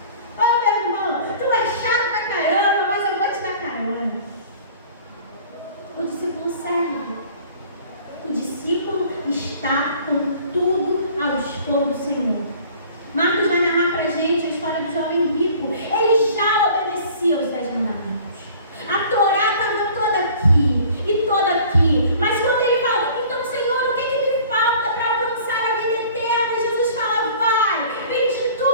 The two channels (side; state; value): both; inverted; correlation -0.49